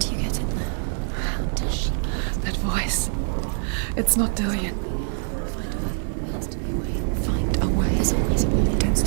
you get in there? How does she get? That voice. It's not Dillian. Find a way. There has to be a way. Find a way. There's always a way. Don't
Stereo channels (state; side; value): silent; left; digital silence